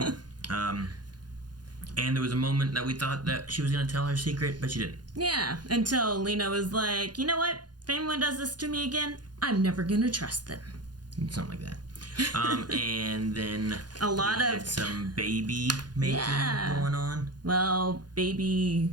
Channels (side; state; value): left; late; 0.70 ms